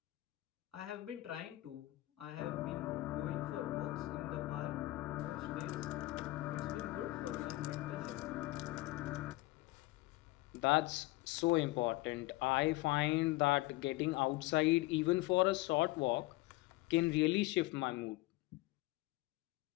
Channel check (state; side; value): quieter; right; 19.6 dB